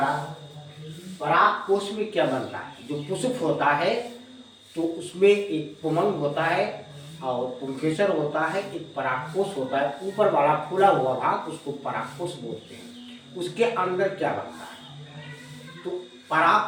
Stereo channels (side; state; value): both; identical; correlation 1.00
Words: पराग कोश में क्या बनता है? जो पुष्प होता है तो उसमें एक पुमंग होता है और पुंकेसर होता है, एक परागकोश होता है। ऊपर वाला फूला हुआ भाग उसको परागकोश बोलते हैं। उसके अंदर क्या बनता है? तो